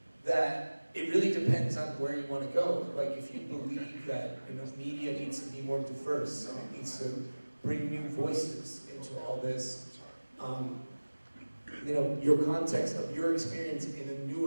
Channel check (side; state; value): both; inverted; correlation -1.00